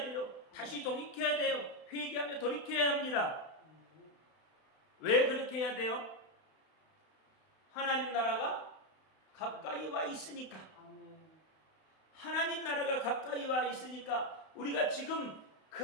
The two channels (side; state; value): right; late; 31 ms